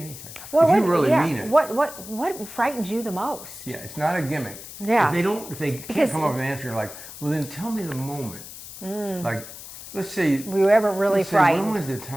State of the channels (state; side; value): noise; left; hiss, 14 dB below the sound